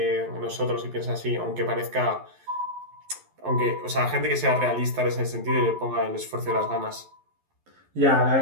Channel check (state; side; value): late; left; 11 ms